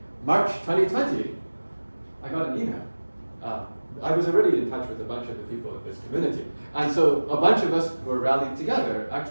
March 2020, I got an email. I was already in touch with a bunch of the people in this community. And so a bunch of us were rallied together,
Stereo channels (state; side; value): inverted; both; correlation -1.00